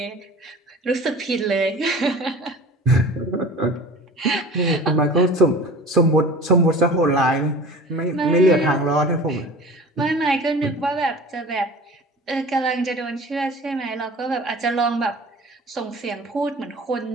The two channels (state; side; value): normal; both; correlation 0.40